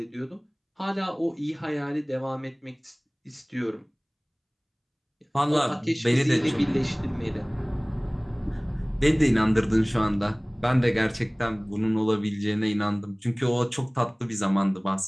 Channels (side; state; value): both; identical; correlation 1.00